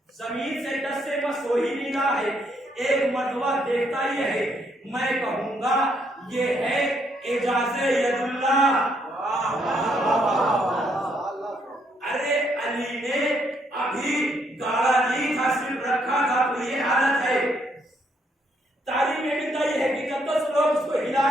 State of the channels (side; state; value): both; normal; correlation 0.72